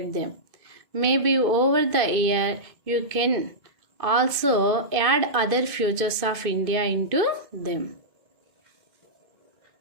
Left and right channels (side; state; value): left; late; 2.5 ms